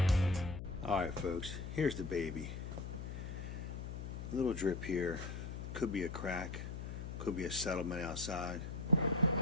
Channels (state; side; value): noise; left; hum, 6 dB below the sound